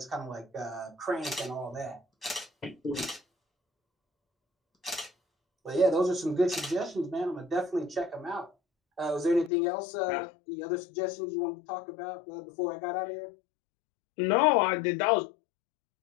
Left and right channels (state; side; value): drops out; right; at 9.5 s